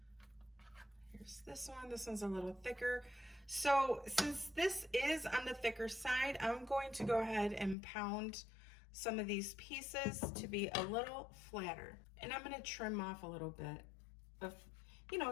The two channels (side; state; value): right; drops out; at 7.8 s